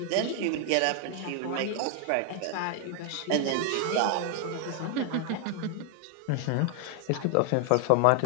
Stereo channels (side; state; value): both; different; correlation 0.00